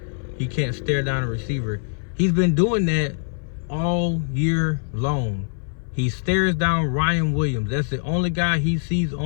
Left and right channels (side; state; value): right; silent; 59 dB below the other